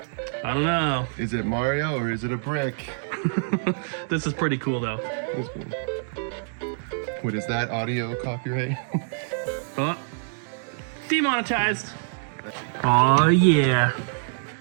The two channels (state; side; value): silent; left; digital silence